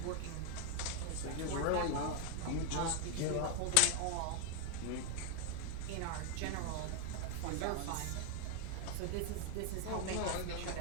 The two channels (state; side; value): different; both; correlation 0.00